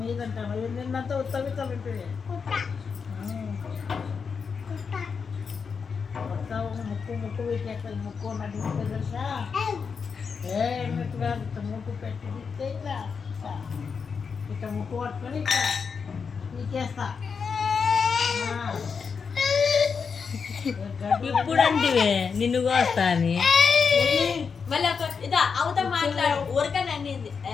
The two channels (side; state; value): right; quieter; 5.8 dB